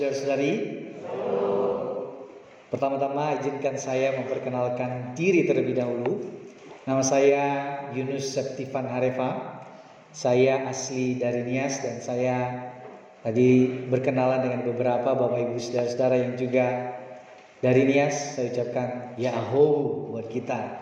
Pertama-tama izinkan saya memperkenalkan diri terlebih dahulu. Nama saya Yunus Septifan Harefa. Saya asli dari Nias dan saya tadi berkenalan dengan beberapa Bapak Ibu Saudara-saudara yang juga dari Nias. Saya ucapkan ya aho buat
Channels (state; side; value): identical; both; correlation 1.00